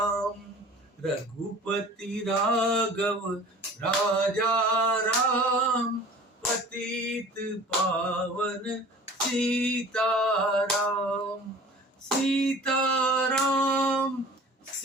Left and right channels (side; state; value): both; normal; correlation 0.45